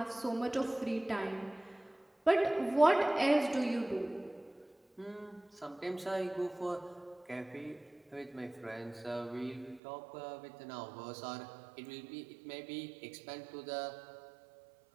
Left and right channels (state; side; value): drops out; left; at 9.8 s